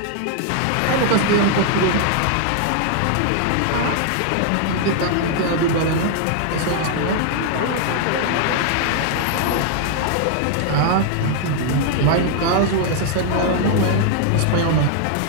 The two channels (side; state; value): both; different; correlation 0.00